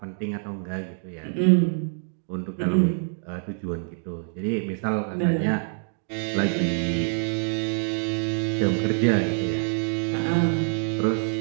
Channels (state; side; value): silent; left; digital silence